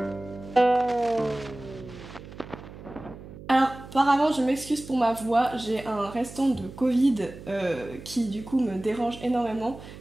Apparemment, je m'excuse pour ma voix, j'ai un restant de Covid qui du coup me dérange énormément,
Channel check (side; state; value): right; noise; hum, 15 dB below the sound